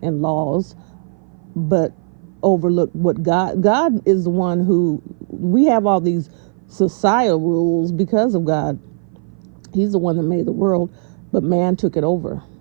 and laws, but overlook what God is the one who, we have all these societal rules because of God. He's the one that made the world, but man took it over.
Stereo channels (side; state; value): left; silent; 57 dB below the other